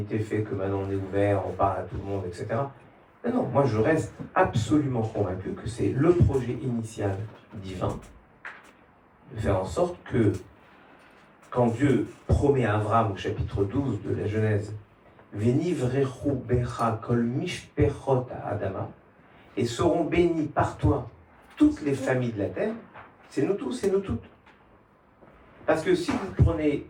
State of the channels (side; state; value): both; identical; correlation 1.00